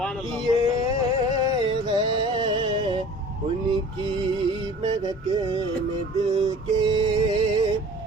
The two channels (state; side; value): normal; both; correlation 0.44